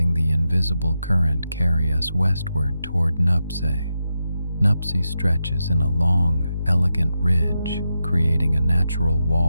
the invisible current carry us westward toward Nuptse. Nuptse stretches in a long, elegant ridge, creating a natural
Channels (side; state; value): both; inverted; correlation -0.87